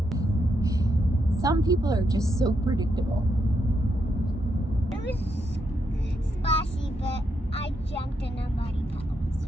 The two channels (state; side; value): normal; both; correlation 0.80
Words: Some people are just so predictable. It was splashy, but I jumped in a muddy